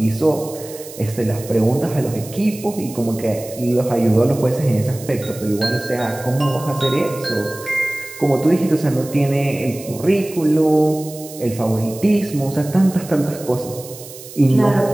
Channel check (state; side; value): noise; right; hiss, 16 dB below the sound